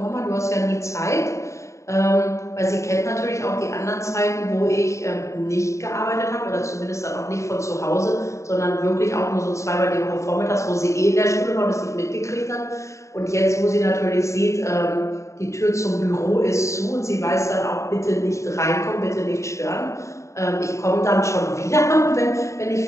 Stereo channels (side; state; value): right; late; 0.14 ms